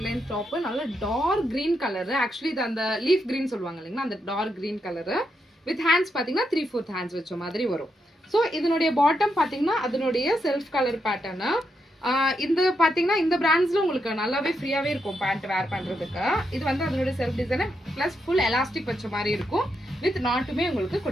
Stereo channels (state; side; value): normal; both; correlation 0.82